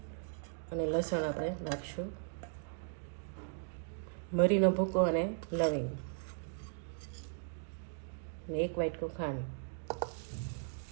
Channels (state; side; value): silent; left; digital silence